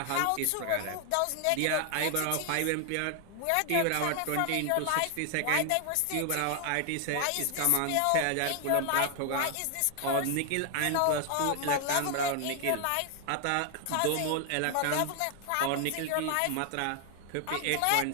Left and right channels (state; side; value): different; both; correlation 0.00